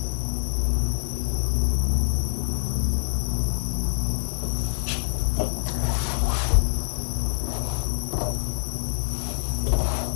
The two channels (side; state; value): right; silent; digital silence